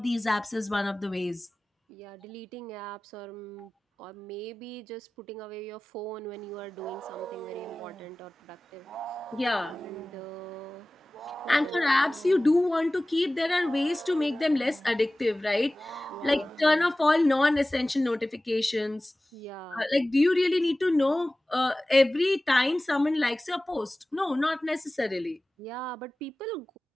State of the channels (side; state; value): both; normal; correlation 0.97